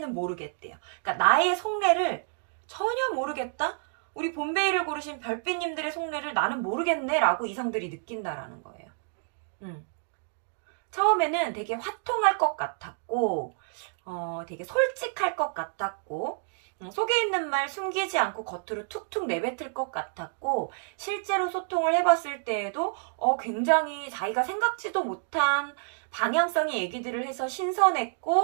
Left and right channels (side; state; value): left; silent; digital silence